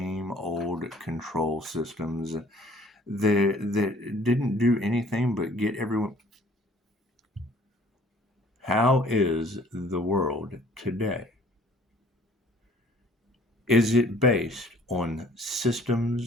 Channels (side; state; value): both; normal; correlation 0.55